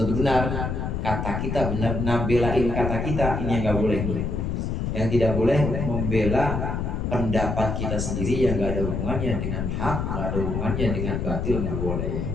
benar. Kata kita benar, nabelain kata kita, ini yang nggak boleh. Yang tidak boleh membela pendapat kita sendiri yang nggak ada hubungannya dengan hak, nggak ada hubungannya dengan batil, nggak boleh.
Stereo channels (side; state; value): left; noise; rumble, 1 dB below the sound